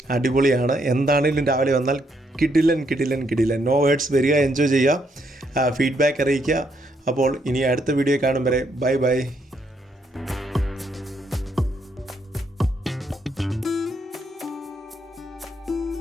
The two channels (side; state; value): both; normal; correlation 0.74